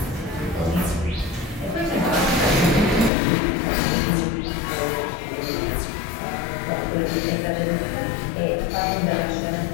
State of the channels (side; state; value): right; drops out; at 3.1 s